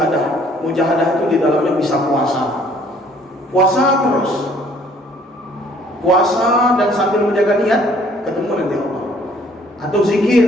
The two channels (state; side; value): normal; both; correlation 0.59